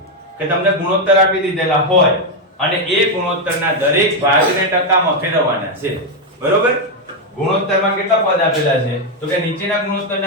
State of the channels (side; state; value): both; normal; correlation 0.04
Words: કે તમને ગુણોત્તર આપી દીધેલા હોય અને એ ગુણોત્તરના દરેક ભાગને ટકામાં ફેરવવાના છે. બરોબર. ગુણોત્તરમાં કેટલા પદ આપેલા છે? તો કે નીચેના